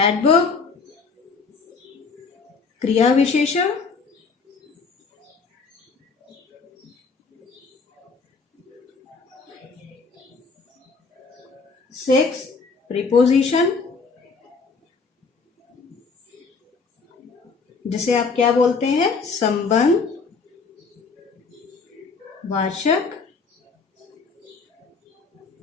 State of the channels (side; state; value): right; quieter; 4.7 dB